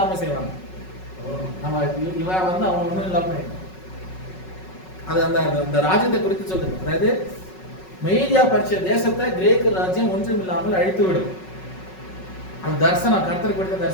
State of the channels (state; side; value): late; right; 5.4 ms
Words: செய்வான். நம்ம இவன் வந்து அவன் ஒன்றும் இல்லாம அது அந்த ராஜ்யத்தை குறித்து சொல்லுது. அதாவது மேதியா பெர்சியா தேசத்தை கிரேக்க ராஜ்யம் ஒன்றும் இல்லாமல் அழித்து விடும். அந்த தரிசனம், கர்த்தர் கொடுத்த